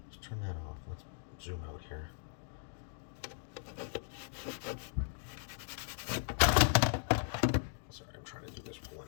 turn that off. Let's zoom out here.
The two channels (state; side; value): silent; right; digital silence